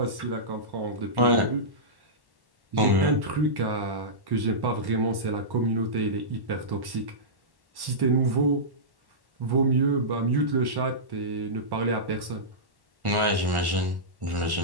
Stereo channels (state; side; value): late; left; 1.1 ms